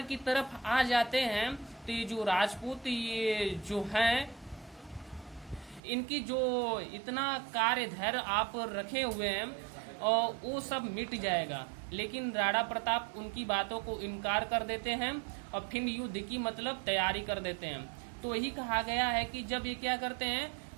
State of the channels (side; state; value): left; drops out; at 5.8 s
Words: की तरफ आ जाते हैं तो ये जो राजपूत ये जो हैं इनकी जो इतना कार्य धैर्य आप रखे हुए हैं और वो सब मिट जाएगा। लेकिन राणा प्रताप उनकी बातों को इनकार कर देते हैं और फिर युद्ध की मतलब तैयारी कर देते हैं। तो यही कहा गया है कि जब ये क्या करते हैं